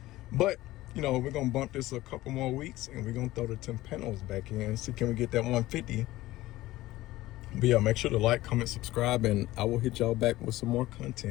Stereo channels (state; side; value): quieter; right; 17.0 dB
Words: but you know, we're gonna bump this a couple more weeks and we're gonna throw the Timpanos back in, see can we get that 150. But yeah, make sure to like, comment, subscribe, and I will hit y'all back with some more